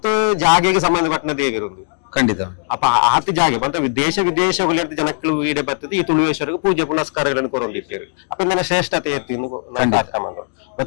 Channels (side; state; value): right; silent; digital silence